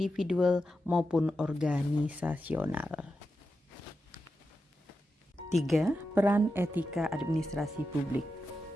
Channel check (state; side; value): normal; both; correlation 0.89